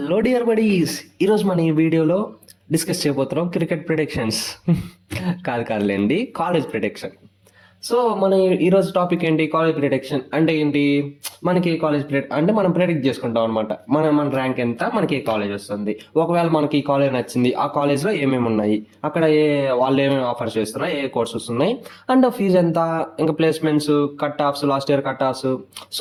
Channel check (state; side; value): identical; both; correlation 1.00